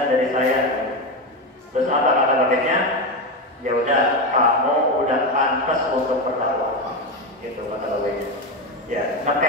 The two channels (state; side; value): normal; both; correlation 0.14